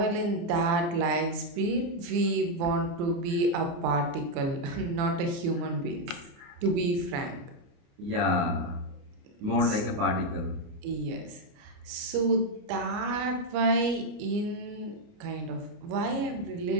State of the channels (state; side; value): late; left; 29 ms